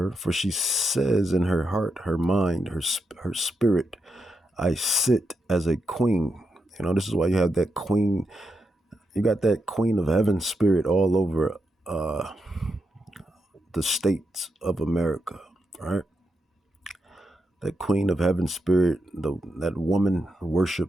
for she says in her heart, her mind, her spirit, I sit as a queen. You know, this is why you have that queen. You got that queen of heaven spirit all over the states of America, right? That queen of heaven spirit, that woman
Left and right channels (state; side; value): normal; both; correlation 0.85